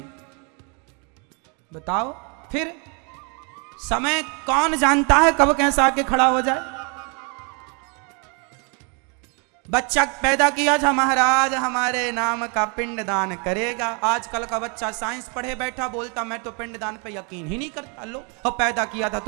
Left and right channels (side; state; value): left; quieter; 35.5 dB